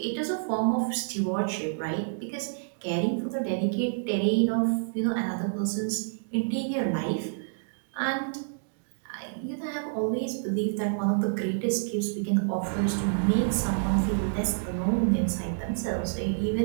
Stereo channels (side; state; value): left; silent; digital silence